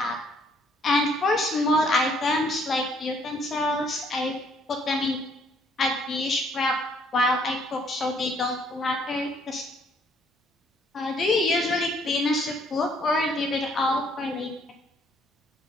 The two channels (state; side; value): normal; both; correlation 0.65